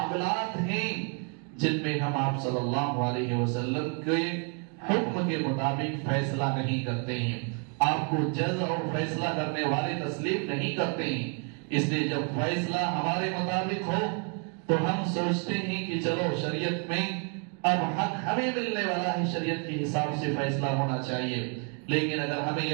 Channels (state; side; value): quieter; left; 38.5 dB